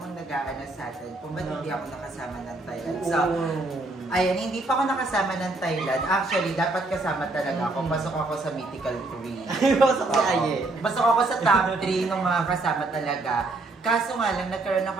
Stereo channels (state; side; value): quieter; left; 3.1 dB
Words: nag-aanas sa atin kung ba't hindi ako nakasama ng Thailand. So, ayan, hindi pa ako nakasama ng Thailand. Actually, dapat kasama talaga ako. Pasok ako sa Mythical 3. Pasok si Aye. Pasok ako sa top 3 ng mga kasama talaga. Kaso nga lang, nagkaroon